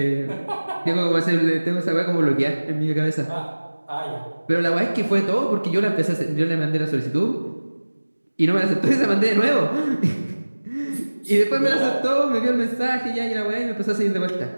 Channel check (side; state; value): both; inverted; correlation -1.00